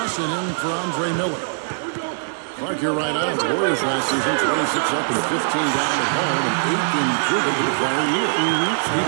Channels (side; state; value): left; silent; digital silence